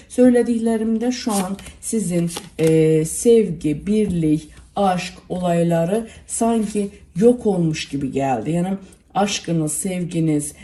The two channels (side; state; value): both; identical; correlation 1.00